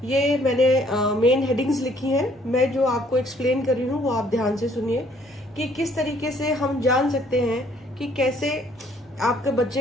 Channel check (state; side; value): normal; both; correlation 0.62